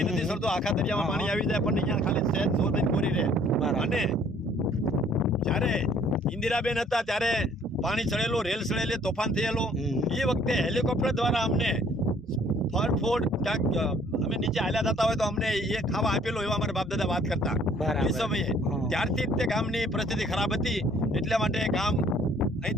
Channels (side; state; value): both; normal; correlation 0.58